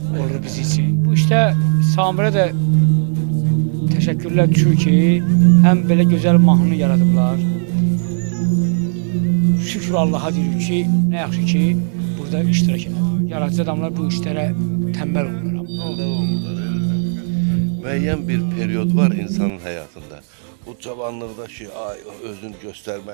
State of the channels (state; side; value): silent; left; digital silence